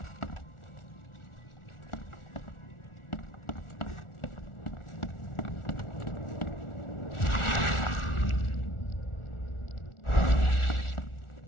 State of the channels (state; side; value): late; right; 1.4 ms